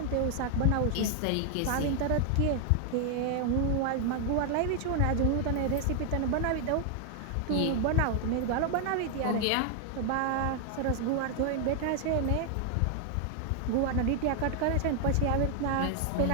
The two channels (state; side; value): different; both; correlation 0.00